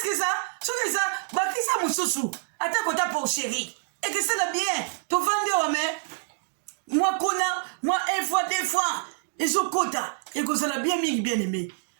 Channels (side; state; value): left; silent; digital silence